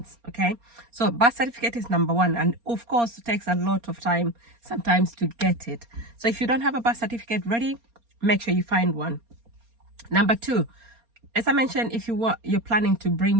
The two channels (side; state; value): left; late; 4.3 ms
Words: Okay, so birth certificate is number one, and of course it takes a lot of time sometimes to get it. So if you don't have a birth certificate ready, make sure you find one. Number two, as I mentioned, if you're planning to bring